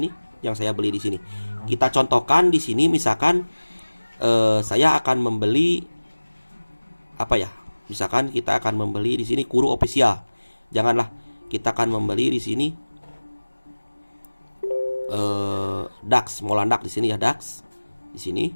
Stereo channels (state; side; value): inverted; both; correlation -1.00